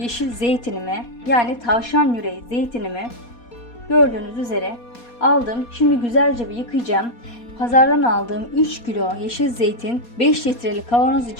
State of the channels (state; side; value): late; right; 4.2 ms